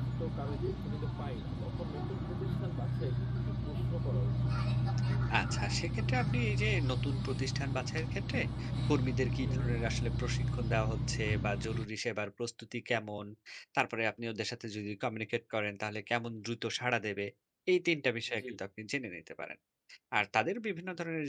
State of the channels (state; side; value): identical; both; correlation 1.00